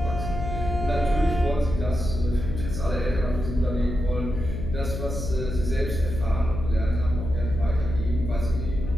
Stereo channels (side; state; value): left; noise; hum, 5 dB below the sound